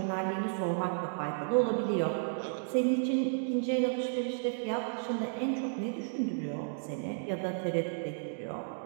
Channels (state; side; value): silent; left; digital silence